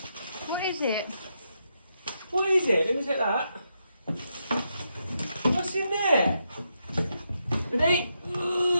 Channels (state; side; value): inverted; both; correlation -0.82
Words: What is it? What is it? Let me take that. What's in there? Ready?